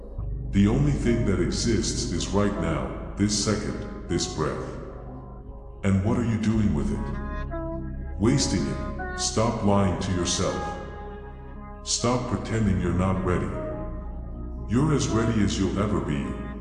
The only thing that exists is right now, this second, this breath. And what are you doing with it? Wasting it. Stop lying to yourself. Stop pretending you're not ready. You're as ready as you'll ever be,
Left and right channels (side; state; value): both; identical; correlation 1.00